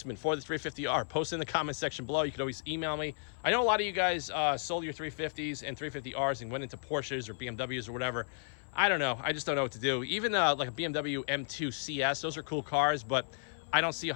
for the 350R, post in the comment section below. You can always email me. I know a lot of you guys sold your 350s and 350Rs and went into Porsches or BMWs or whatever. I don't know. I just don't know what to do. Even like a BMW M2 CS, those are cool cars, but I don't see a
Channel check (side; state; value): right; silent; 55 dB below the other